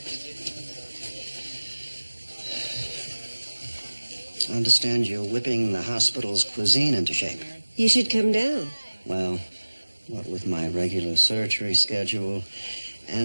I understand you're whipping the hospital's cuisine into shape. You should come down. Well, what with my regular surgery schedule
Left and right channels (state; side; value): inverted; both; correlation -1.00